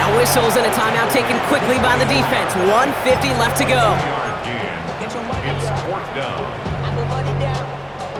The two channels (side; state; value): both; identical; correlation 1.00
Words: whistles and a timeout taken quickly by the defense. 1:50 left to go. It's 4th down.